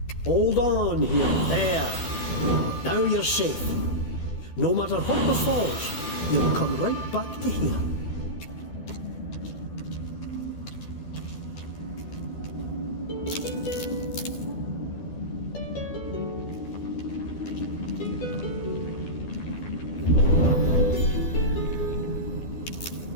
Hold on here. There. Now you're safe. No matter what befalls, you'll come right back to here.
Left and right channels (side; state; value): right; late; 12 ms